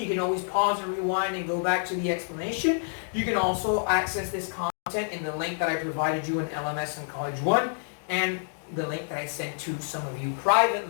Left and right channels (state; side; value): silent; right; 59 dB below the other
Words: can always pause and rewind and go back to the explanation. You can also access this content in the link that I provided you in LMS and College 1, and the link that I sent to some of you